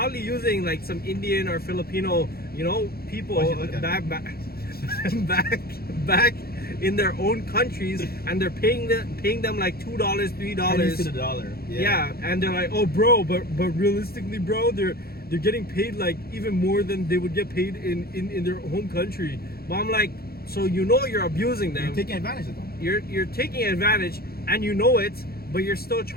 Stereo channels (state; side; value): late; right; 0.45 ms